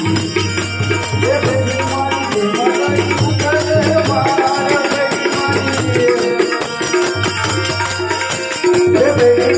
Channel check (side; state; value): both; identical; correlation 1.00